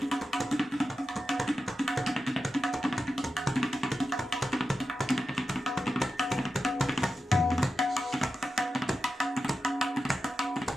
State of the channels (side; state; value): both; normal; correlation 0.91